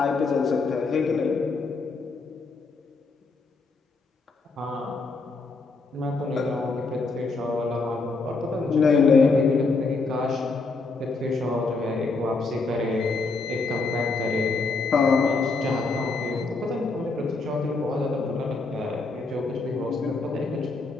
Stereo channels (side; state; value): right; quieter; 3.9 dB